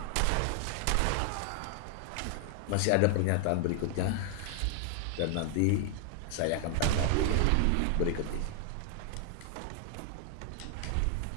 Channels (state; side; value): different; both; correlation 0.00